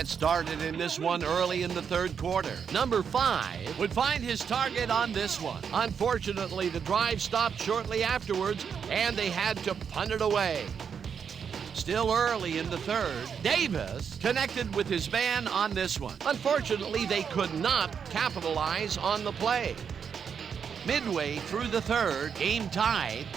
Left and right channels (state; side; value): quieter; left; 7.0 dB